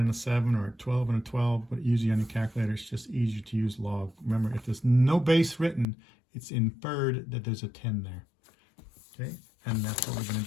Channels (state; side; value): drops out; right; at 5.9 s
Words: a 7 or a 12 and a 12, but usually on your calculator it's just easier to use log. Remember, if there's no base written, it's inferred that there's a 10 there. Okay, and that's what we're going